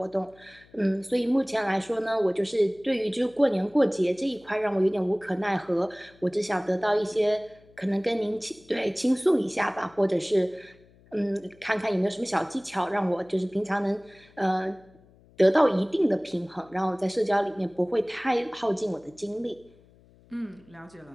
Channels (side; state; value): left; noise; hum, 28 dB below the sound